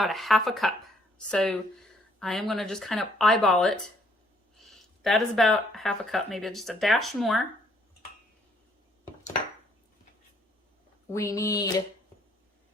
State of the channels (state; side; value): normal; both; correlation 0.66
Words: a half a cup. So I am gonna just kind of eyeball it. That is about half a cup, maybe just a dash more. We need